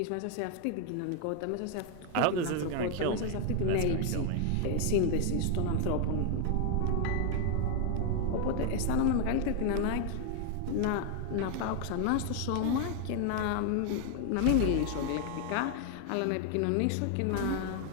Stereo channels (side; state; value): both; different; correlation 0.00